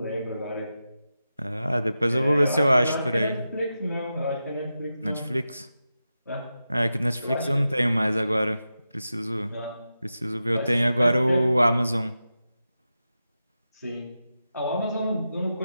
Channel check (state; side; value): inverted; both; correlation -0.91